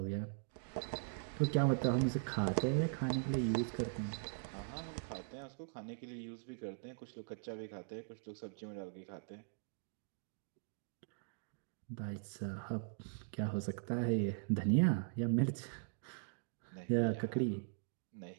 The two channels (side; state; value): left; silent; digital silence